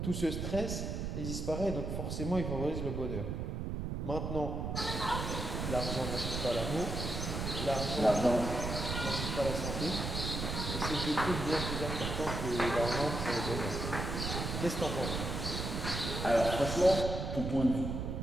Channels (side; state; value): right; noise; rumble, 3 dB below the sound